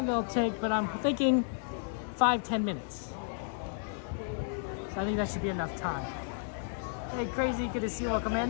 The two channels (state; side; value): silent; right; digital silence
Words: it'll take, but I'm thinking 5-10 minutes. So I think that should be enough time. Hey, Crazy, good to see you. Welcome